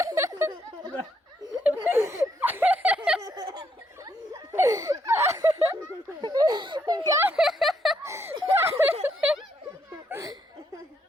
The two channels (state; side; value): normal; both; correlation 0.74